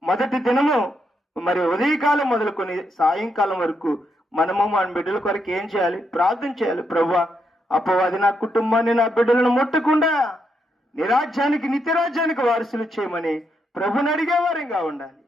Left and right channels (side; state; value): both; normal; correlation 0.79